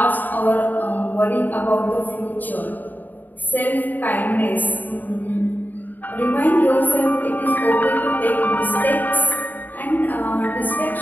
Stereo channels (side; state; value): right; late; 0.087 ms